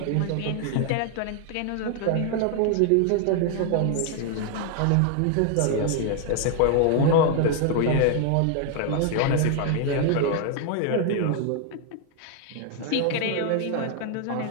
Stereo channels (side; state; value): both; different; correlation 0.00